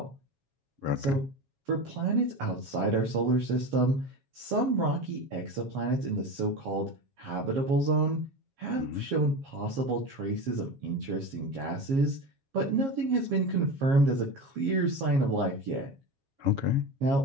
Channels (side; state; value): left; late; 7.3 ms